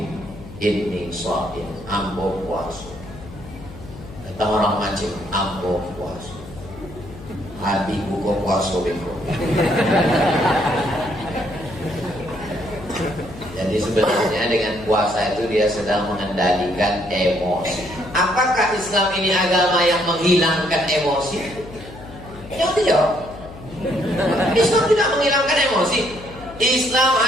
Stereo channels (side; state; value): left; noise; hum, 16 dB below the sound